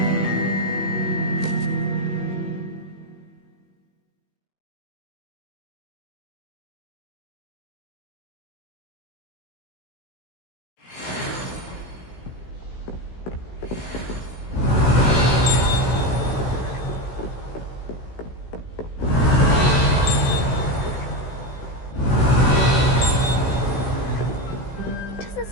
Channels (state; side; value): late; right; 16 ms